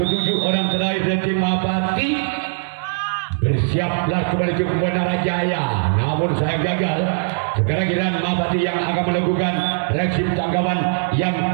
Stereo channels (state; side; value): silent; left; 57 dB below the other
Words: ketujuh, orang terakhir dari tim Mahapati. Bersiaplah kembali ke Menara Jaya. Namun saya gagal. Sekarang giliran Mahapati yang akan melakukan reaksi tanggapan yang